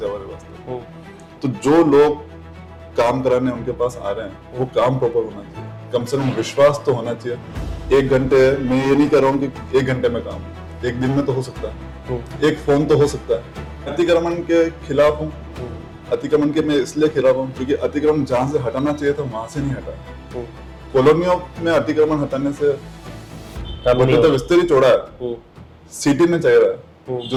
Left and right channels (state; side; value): identical; both; correlation 1.00